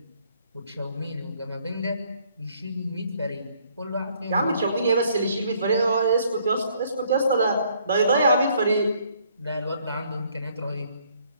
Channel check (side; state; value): both; inverted; correlation -0.65